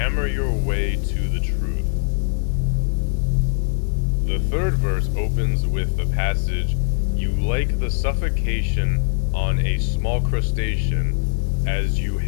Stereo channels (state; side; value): silent; right; digital silence